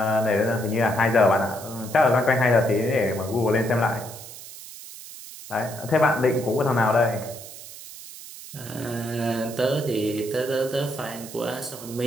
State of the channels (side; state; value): right; noise; hiss, 14 dB below the sound